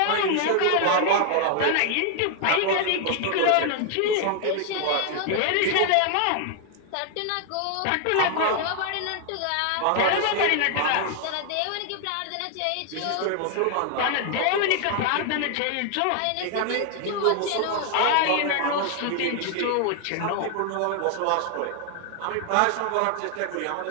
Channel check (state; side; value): different; both; correlation 0.00